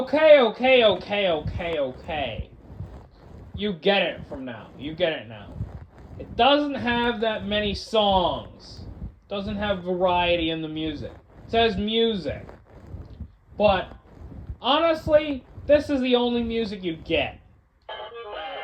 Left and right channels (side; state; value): both; identical; correlation 1.00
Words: You get it from now. You get it now. It doesn't have that many songs. It doesn't have variety in the music. It says music. But honestly, this is the only music you get.